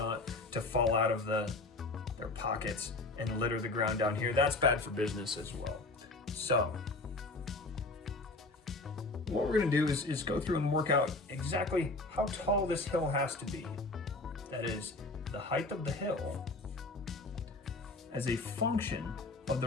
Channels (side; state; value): right; quieter; 3.2 dB